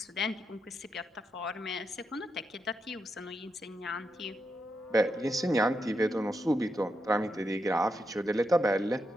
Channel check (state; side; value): normal; both; correlation 0.84